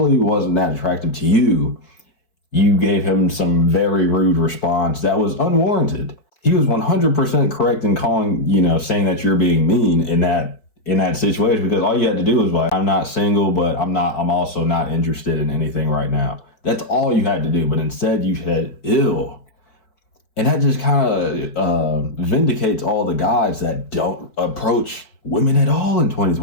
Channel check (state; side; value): late; right; 4.6 ms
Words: wasn't that attractive to you, you gave him some very rude response that was unwarranted. He was 100% correct in saying that you're being mean in that situation, because all you had to do was like, "I'm not single, but I'm also not interested in anything right now." That's all you had to do. But instead you said, "Ew." And that just kind of vindicates all the guys that don't approach women at all in